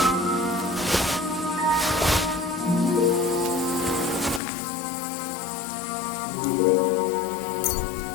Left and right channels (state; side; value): drops out; right; at 4.4 s